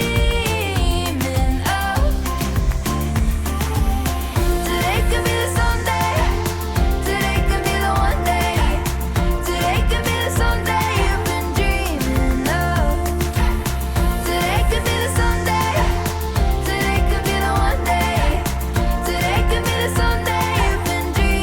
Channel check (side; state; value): both; identical; correlation 1.00